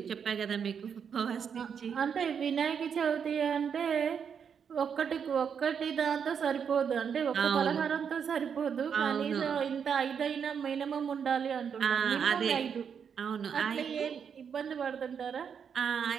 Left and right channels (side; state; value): left; quieter; 7.2 dB